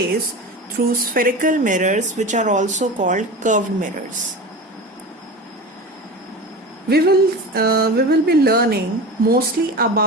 through spherical mirrors, which are also called curved mirrors. We will be learning mostly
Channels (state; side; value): normal; both; correlation 0.30